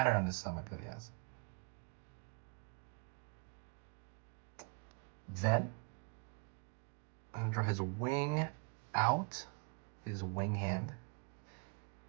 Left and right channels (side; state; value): left; quieter; 37.3 dB